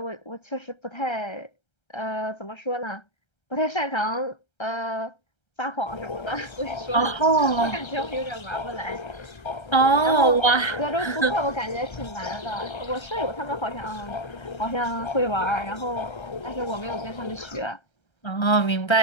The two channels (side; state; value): right; late; 1.3 ms